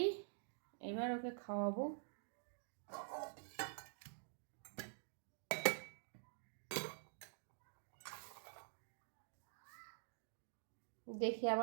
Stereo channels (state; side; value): silent; left; digital silence